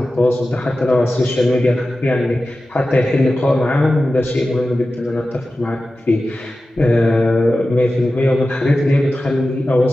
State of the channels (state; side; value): normal; both; correlation 0.94